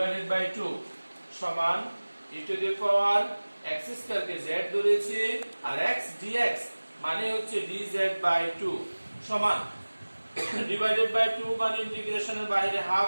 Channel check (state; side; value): inverted; both; correlation -1.00